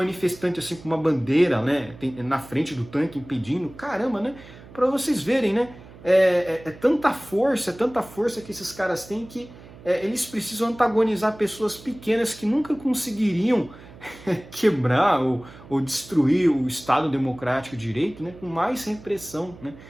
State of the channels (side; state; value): right; noise; hum, 20 dB below the sound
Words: assim com uma bandeira, né, na frente do tanque impedindo. Caramba, né? Para vocês verem, né? É tanta força que esses caras têm que eles precisam antagonizar pessoas pequenas que nunca conseguiriam quebrar ou destruir o Estado democrático de direito, né, com mais repressão, né?